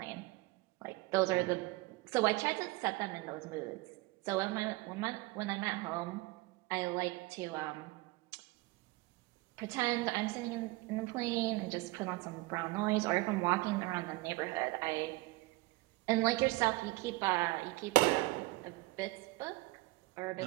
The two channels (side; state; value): left; quieter; 21.6 dB